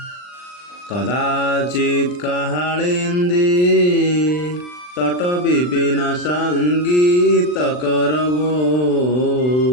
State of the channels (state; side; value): late; right; 39 ms